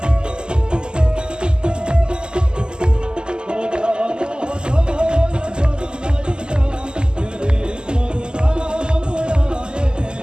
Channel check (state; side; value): late; left; 0.047 ms